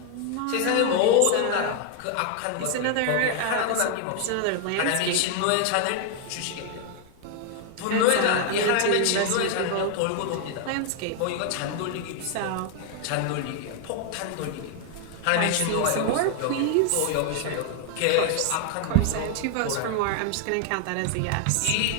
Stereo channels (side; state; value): both; different; correlation 0.00